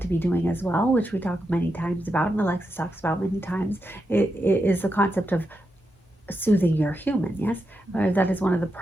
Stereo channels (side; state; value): both; normal; correlation 0.86